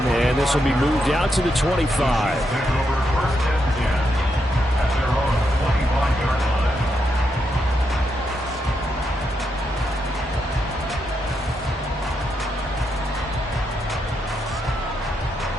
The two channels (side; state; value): both; normal; correlation 0.82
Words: and this will be moved out to the 25.